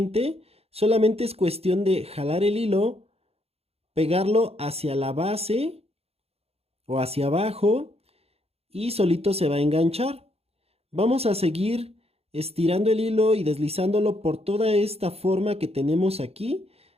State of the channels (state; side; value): late; left; 0.29 ms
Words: Solamente es cuestión de jalar el hilo, pegarlo hacia la base o hacia abajo y solito se va a enganchar. Vamos a seguir estirando el hilo y deslizándolo por toda esta forma que tenemos aquí